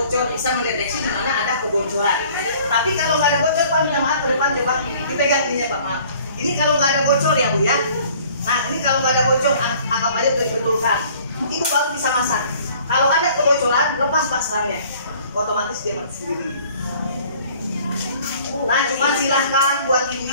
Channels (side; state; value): both; inverted; correlation -0.53